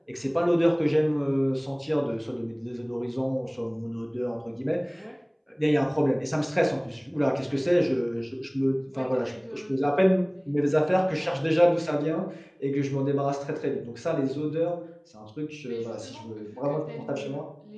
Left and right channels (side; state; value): both; identical; correlation 1.00